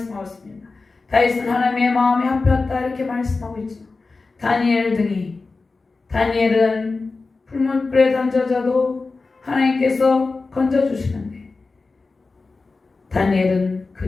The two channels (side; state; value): right; quieter; 3.9 dB